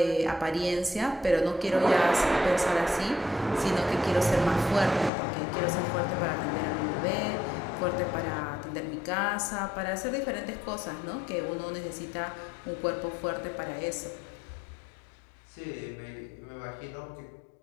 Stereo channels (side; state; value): right; drops out; at 5.1 s